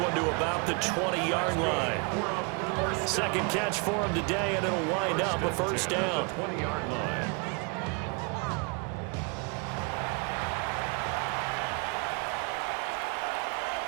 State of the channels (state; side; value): quieter; left; 32.6 dB